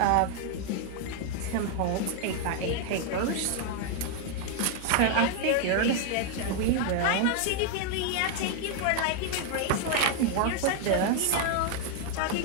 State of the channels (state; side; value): different; both; correlation 0.00